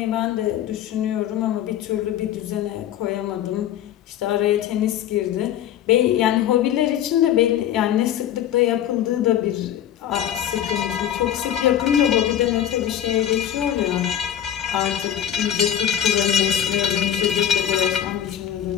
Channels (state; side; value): quieter; right; 10.6 dB